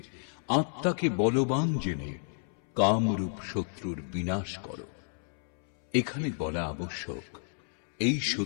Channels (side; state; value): right; silent; 57 dB below the other